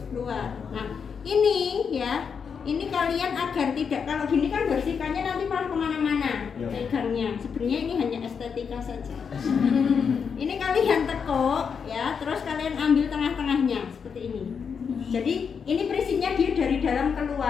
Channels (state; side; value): quieter; right; 6.4 dB